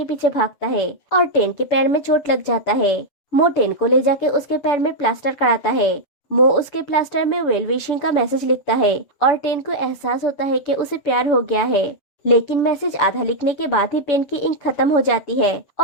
पीछे भागता है और टेन के पैर में चोट लग जाता है। मो टेन को ले जाके उसके पैर में प्लास्टर कराता है। मो उसके प्लास्टर में वेल विशिंग का मैसेज लिखता है और टेन को एहसास होता है कि उसे प्यार हो गया है। लेकिन मैसेज आधा लिखने के बाद ही पेन की इंक खत्म हो जाती है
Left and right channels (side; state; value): right; late; 6.9 ms